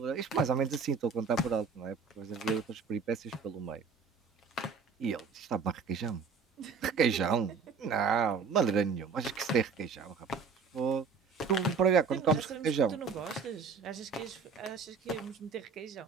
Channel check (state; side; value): quieter; left; 5.3 dB